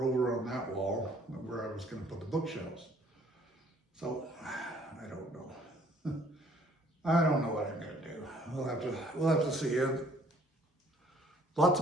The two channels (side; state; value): both; normal; correlation 0.59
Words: over on that wall where I was gonna put the bookshelves. So, I don't know. I don't know what I'm gonna do. We'll have to see. Lots